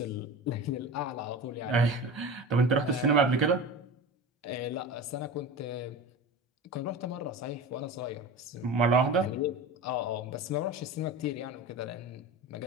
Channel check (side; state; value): both; normal; correlation 0.31